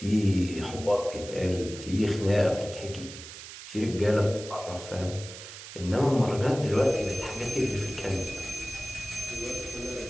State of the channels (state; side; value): noise; right; hiss, 13 dB below the sound